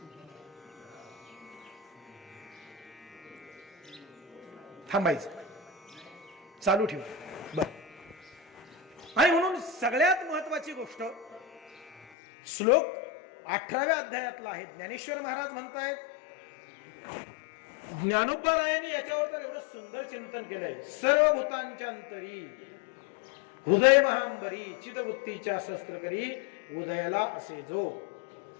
थांबायचं, चालू ठेवा. बर. आणि म्हणून सगळ्यात महत्वाची गोष्ट श्लोक 18व्या अध्यायातला आहे. ज्ञानेश्वर महाराज म्हणतायत, ज्ञानोबा रायांनी याच्यावर तर एवढं सुंदर चिंतन केलंय. सर्व भूतांच्या अंतरी हृदय महांबरी चिदवृत्तीच्या शस्त्र करी उदयाला असे जो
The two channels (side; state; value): right; drops out; at 12.0 s